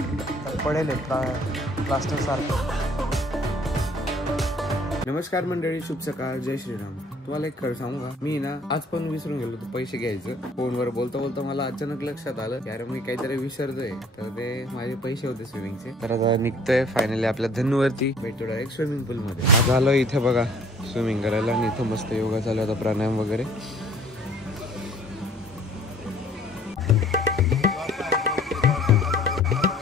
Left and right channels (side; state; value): both; normal; correlation 0.56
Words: पडेल प्लास्टर सारखं. नमस्कार मंडळी, शुभ सकाळ, जय श्रीराम. तुम्हाला एक खरं सांगू का, मी ना आज पण विसरून गेलो होतो पैसे घ्यायचं. फोनवर बोलता बोलता मला अचानक लक्षात आलं की अरे मी काहीतरी विसरतोय, तर ते माझे पैसे होते स्विमिंगचे. तर आता निघतोय फायनली आपल्या धन्नूवरती, भेटतो डायरेक्ट स्विमिंग पूल मध्ये. आज आलो इथे बघा स्विमिंग करायला, आणि इथं मस्त योगा चालू होता, प्राणायाम वगैरे.